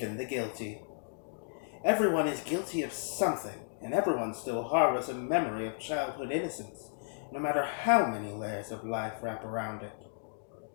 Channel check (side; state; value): right; silent; digital silence